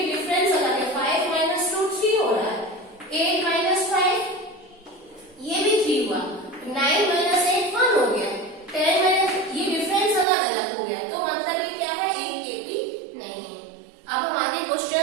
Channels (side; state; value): left; drops out; at 10.2 s